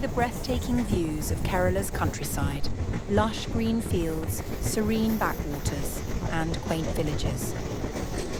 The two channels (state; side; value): identical; both; correlation 1.00